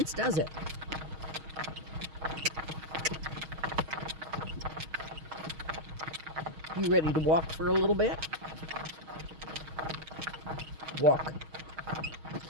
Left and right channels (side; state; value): left; late; 6.3 ms